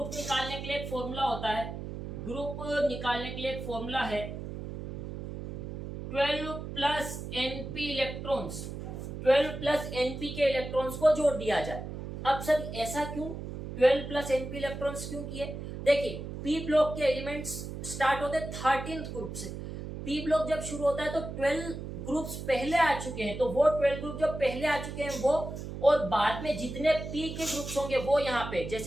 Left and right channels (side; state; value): right; noise; hum, 8 dB below the sound